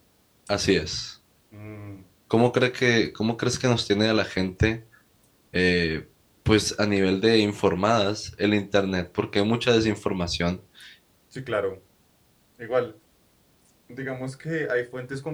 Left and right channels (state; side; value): identical; both; correlation 1.00